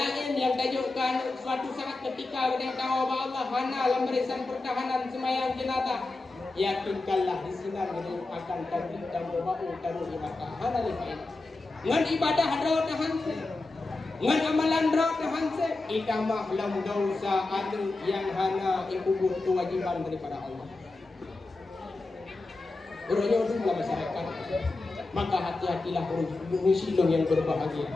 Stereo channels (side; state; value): right; quieter; 3.3 dB